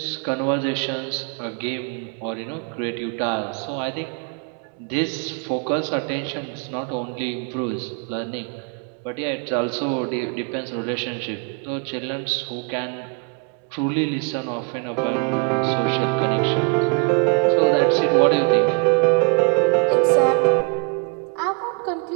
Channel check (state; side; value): quieter; left; 35.0 dB